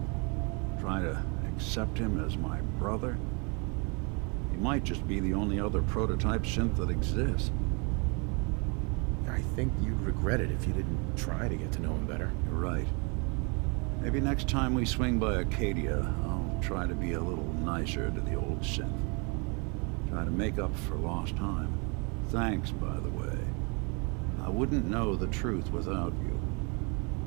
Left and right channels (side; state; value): left; quieter; 32.9 dB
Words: Try to accept him as my brother? He might just be the only other prototype synth that exists. I think you'd regret it if you didn't try to get to know him better. You're right. Maybe next time we swing by Acadia, I'll try to be a little nicer to the old synth. Try to make up for lost time. Thanks, by the way. I wouldn't know the truth without you.